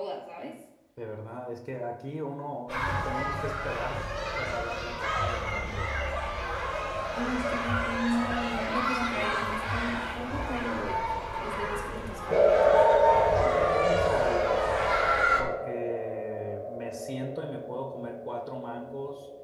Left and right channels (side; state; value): both; identical; correlation 1.00